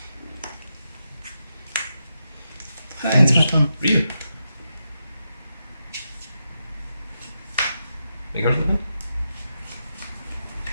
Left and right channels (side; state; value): both; inverted; correlation -0.87